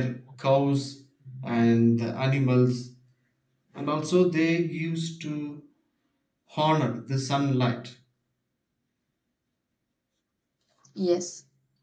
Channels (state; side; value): identical; both; correlation 1.00